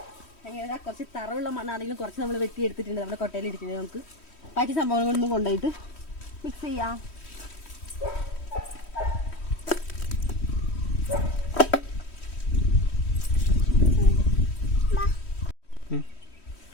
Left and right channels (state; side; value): late; right; 3.1 ms